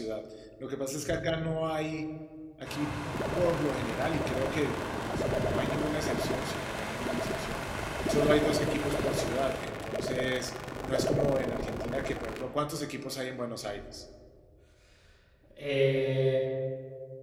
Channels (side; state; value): both; identical; correlation 1.00